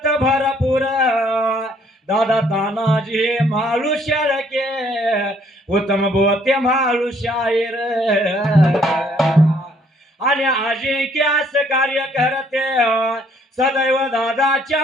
भरपूर. दादा तानाजी माळू शेळके, उत्तम बोते माळू शाहीर. आणि अजिंक्यास कार्य करते सदैव दादाच्या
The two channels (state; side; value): normal; both; correlation 0.64